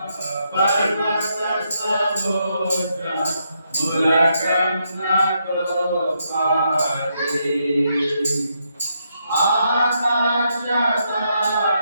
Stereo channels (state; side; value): inverted; both; correlation -0.79